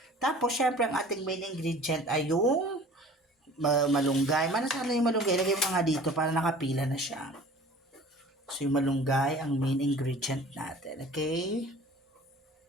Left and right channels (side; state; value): both; normal; correlation 0.45